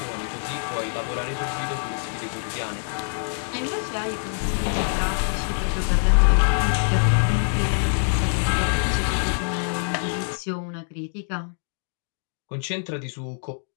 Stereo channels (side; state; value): right; silent; digital silence